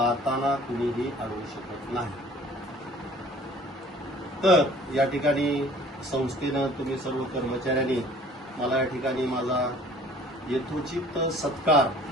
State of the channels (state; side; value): normal; both; correlation 0.51